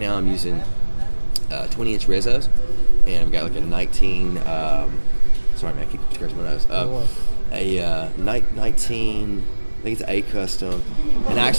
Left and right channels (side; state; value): both; inverted; correlation -1.00